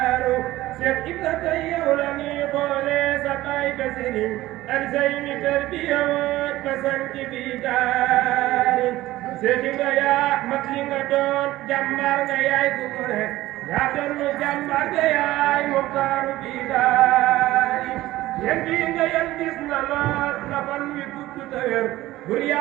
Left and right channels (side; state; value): left; quieter; 16.5 dB